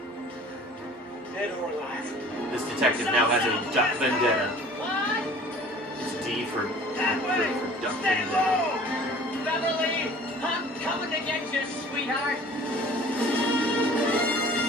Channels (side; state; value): both; normal; correlation 0.47